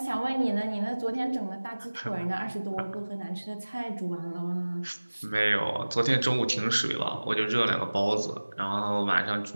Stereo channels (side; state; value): both; inverted; correlation -1.00